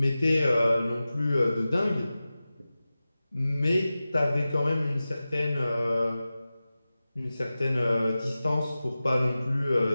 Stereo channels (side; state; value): both; inverted; correlation -0.95